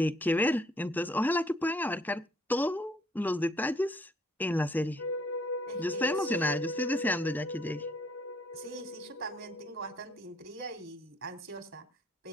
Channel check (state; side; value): normal; both; correlation 0.64